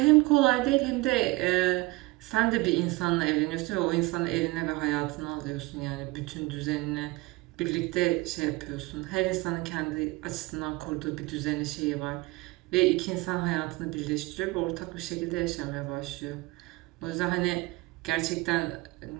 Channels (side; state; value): left; quieter; 21.9 dB